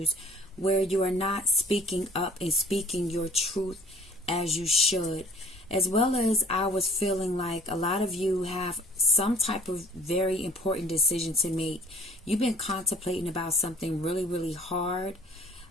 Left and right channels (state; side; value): normal; both; correlation 0.52